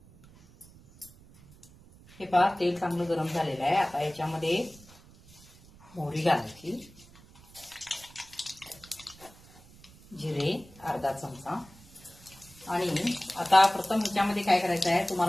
हे पहा, तेल चांगलं गरम झालेलं आहे। आता याच्यामध्ये मोहरी घालायची, जिरे अर्धा चमचा, आणि आता प्रथम ह्याच्यामध्ये काय करायचं आहे,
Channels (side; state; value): right; noise; rumble, 23 dB below the sound